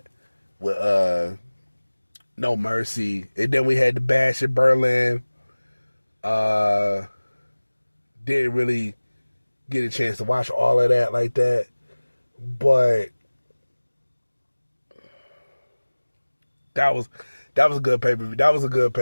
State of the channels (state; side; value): inverted; both; correlation -1.00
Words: with No Mercy. And then we had the Bash in Berlin. Didn't really get a chance to watch all of that like that. But that was a good pay-per-view. That was a good